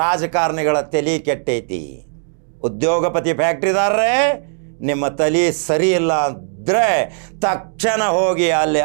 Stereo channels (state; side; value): silent; left; digital silence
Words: ತಲೆ ಕೆಟ್ಟೈತಿ. ಉದ್ಯೋಗಪತಿ ಫ್ಯಾಕ್ಟ್ರಿದಾರರೇ, ನಿಮ್ಮ ತಲೆ ಸರಿ ಇಲ್ಲ ಅಂದರೆ ತಕ್ಷಣ ಹೋಗಿ ಅಲ್ಲಿ